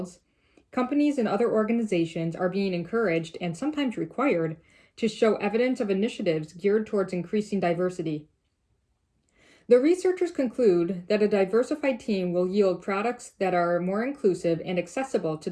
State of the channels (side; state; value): both; identical; correlation 1.00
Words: companies and other organizations are being encouraged and sometimes required to show evidence of initiatives geared towards increasing diversity. The researchers conclude that a diversified team will yield products that are more inclusive and accessible to